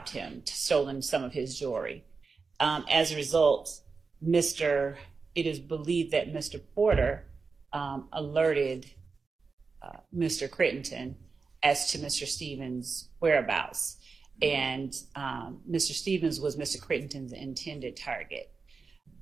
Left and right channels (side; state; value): left; quieter; 4.6 dB